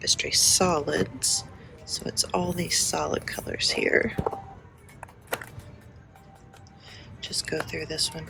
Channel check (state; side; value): identical; both; correlation 1.00